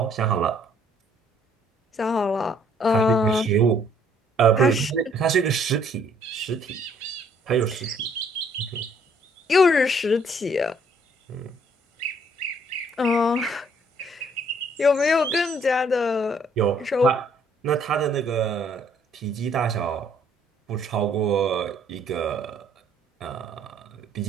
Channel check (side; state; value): both; normal; correlation 0.64